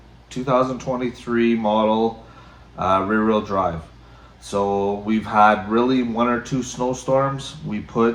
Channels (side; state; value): both; identical; correlation 1.00